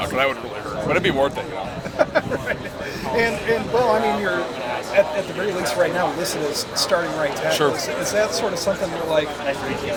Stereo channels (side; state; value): both; identical; correlation 1.00